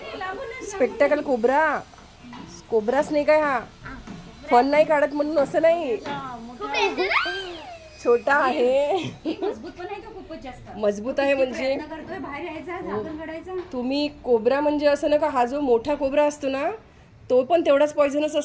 Spectacle cobra. कोब्रा स्नेक आहे हा. फन नाही काढत म्हणून असं नाही, छोटा आहे, मजबूत आहे. म्हणजे तुम्ही कोब्रा म्हणजे असं ना का, हा जो मोठा कोब्रा असतो ना तो पण तेवढाच पॉइझनस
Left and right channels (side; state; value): both; identical; correlation 1.00